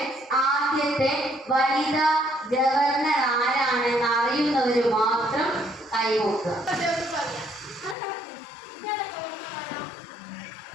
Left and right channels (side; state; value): right; drops out; at 8.0 s